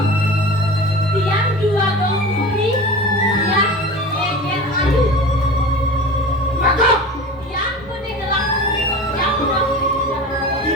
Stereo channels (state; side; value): normal; both; correlation 0.34